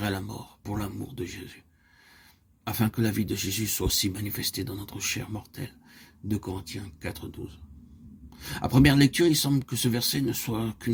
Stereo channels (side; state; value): both; identical; correlation 1.00